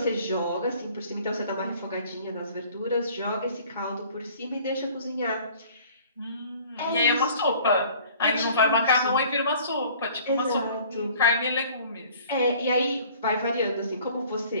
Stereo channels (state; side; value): inverted; both; correlation -0.51